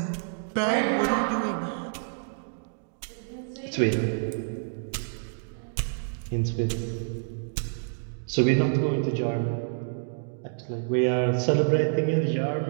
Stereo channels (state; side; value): silent; left; digital silence